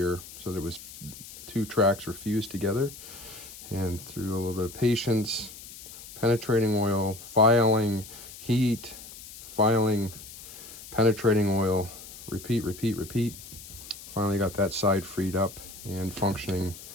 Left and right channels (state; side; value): noise; left; hiss, 15 dB below the sound